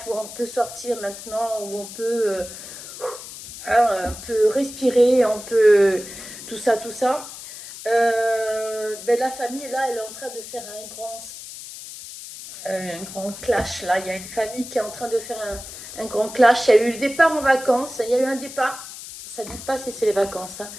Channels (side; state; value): left; noise; hiss, 12 dB below the sound